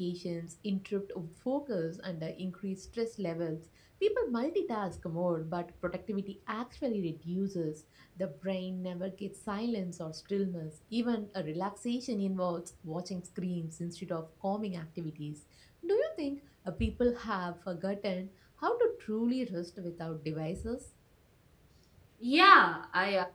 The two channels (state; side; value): identical; both; correlation 1.00